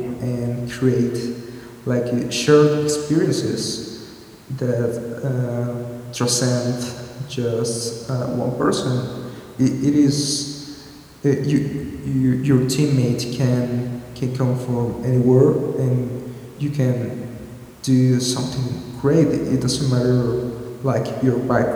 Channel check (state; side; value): identical; both; correlation 1.00